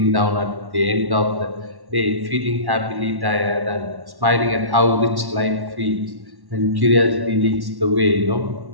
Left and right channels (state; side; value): late; left; 1.1 ms